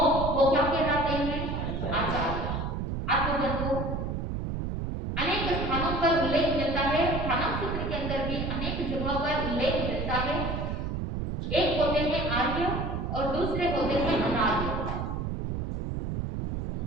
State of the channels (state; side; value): noise; right; rumble, 3 dB below the sound